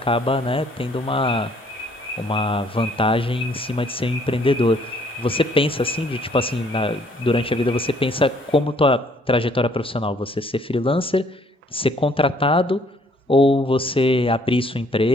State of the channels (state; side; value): normal; both; correlation 0.63